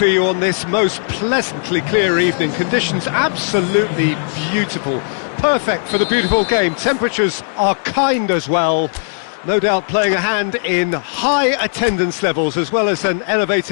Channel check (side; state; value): right; silent; 68 dB below the other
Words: you on this most pleasantly clear evening. Conditions absolutely beautiful. Perfect for the beautiful game. Temperatures are kind as well. No doubt playing a hand in high attendance levels as well as an